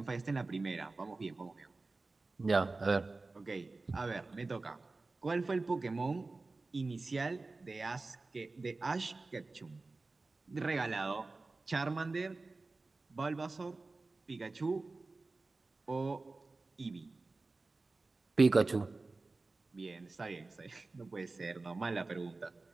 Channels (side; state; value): left; quieter; 3.5 dB